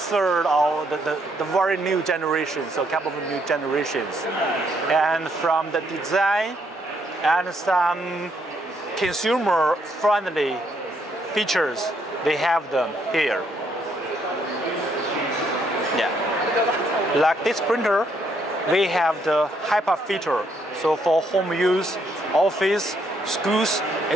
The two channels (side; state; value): both; normal; correlation 0.72